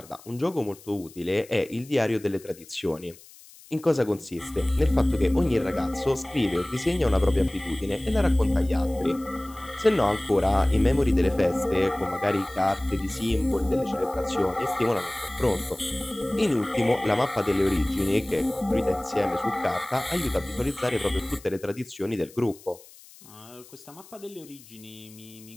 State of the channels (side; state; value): left; noise; hiss, 22 dB below the sound